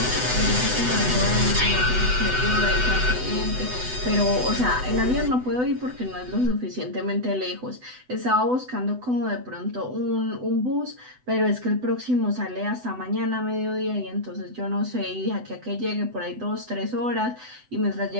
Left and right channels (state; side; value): late; left; 8.0 ms